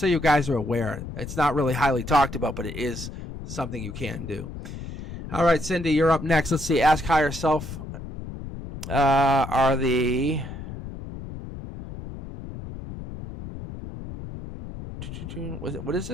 you guys are aware. It's not really highly talked about, but it is something you can do. All right, Cindy, you're up next. Let's see. Ask Higher Self. What is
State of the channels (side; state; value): left; noise; rumble, 10 dB below the sound